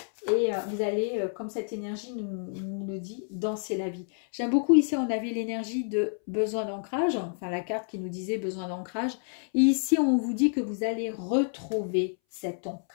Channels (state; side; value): silent; right; 59 dB below the other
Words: Et vous allez, comme cette énergie nous le dit, danser la vie. J'aime beaucoup ici, on avait l'énergie de besoin d'ancrage. Enfin, la carte qui nous disait besoin d'ancrage. Et ici, on vous dit que vous allez retrouver cet